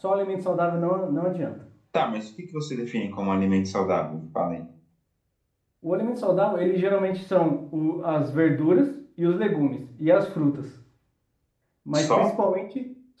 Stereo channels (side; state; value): both; identical; correlation 1.00